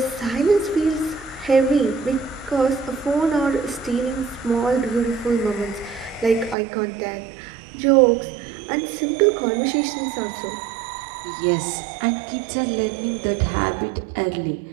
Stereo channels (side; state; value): left; drops out; at 6.6 s